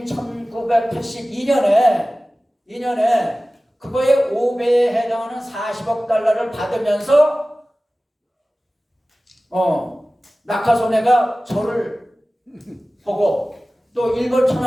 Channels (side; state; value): both; normal; correlation 0.97